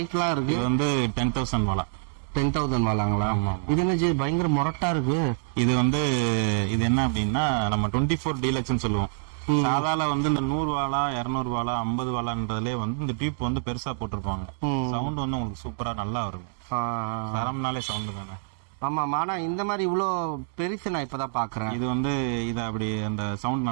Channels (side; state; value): left; silent; digital silence